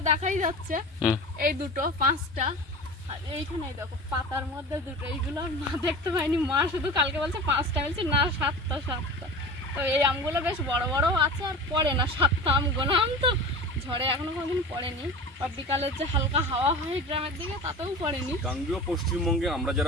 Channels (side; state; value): both; normal; correlation 0.34